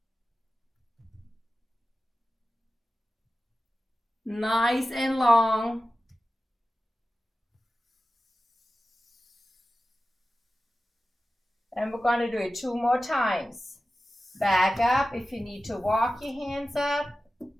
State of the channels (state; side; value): normal; both; correlation 0.95